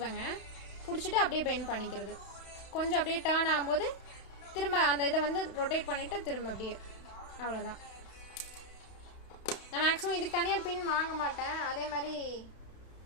பிடிச்சிட்டு அப்படியே பெண்ட் பண்ணிக்கிறது. கொஞ்சம் அப்படியே டேர்ன் ஆகும்போது திரும்ப அந்த இதை வந்து ரொட்டேட் பண்ணிவிட்டு திரும்ப அப்படியே, அவ்வளோதான். நான் மேக்ஸிமம் இதுக்கு தனியாக பின் வாங்க மாட்டேன். அதே மாதிரி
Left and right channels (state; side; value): late; right; 31 ms